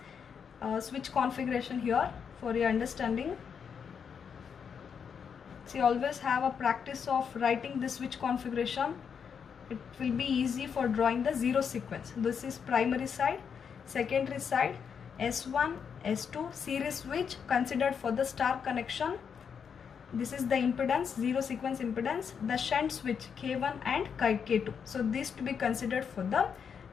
switch configuration here for your understanding. So you always have a practice of writing this switch configuration. It will be easy for drawing the zero sequence. This is primary side, secondary side, S1, S2, series switch considered for the star connection. This is the impedance, zero sequence impedance, the shunt switch K1 and K2. So these to be considered for the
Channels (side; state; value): right; quieter; 6.9 dB